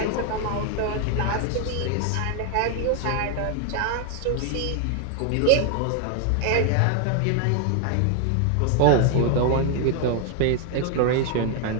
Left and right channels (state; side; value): different; both; correlation 0.00